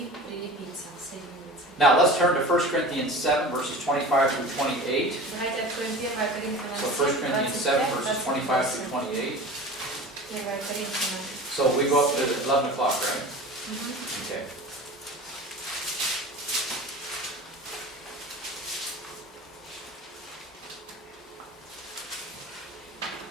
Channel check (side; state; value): both; normal; correlation 0.36